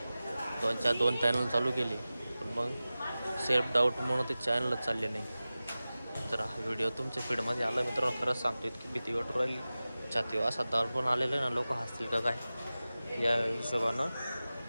2 चॅनल चालू केले, पण मग सेल्फ डाऊटमुळं ते चॅनलच चालले नाही. तर हा व्हिडिओ तुमच्या फीडमध्ये आला मित्रांनो, खरंच सांगतो इतकी भीती वाटू राहिली छातीवर, असा दडपण आलेलं आहे ना, लोक हसतील का काय या हिशोबानं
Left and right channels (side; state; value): both; inverted; correlation -0.96